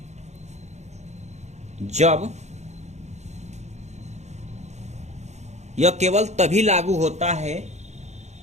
जब, यह केवल तभी लागू होता है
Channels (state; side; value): late; left; 0.33 ms